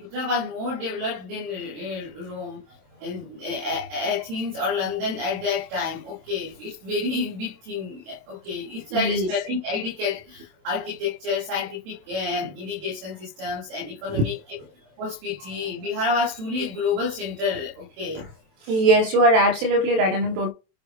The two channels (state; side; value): late; left; 27 ms